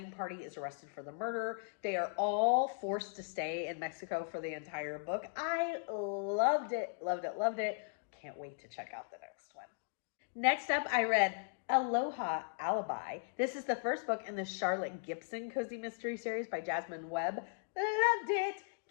party is arrested for the murder. They are all forced to stay in Mexico for the entire book. I loved it. Can't wait to check out the next one. Next up, I read Aloha Alibi. This is the first book in the Charlotte Gibson Cozy Mystery series by Jasmine Webb. Loved it.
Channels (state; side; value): silent; right; digital silence